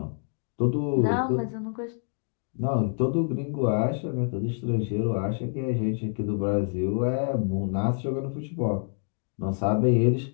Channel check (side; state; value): right; silent; 56 dB below the other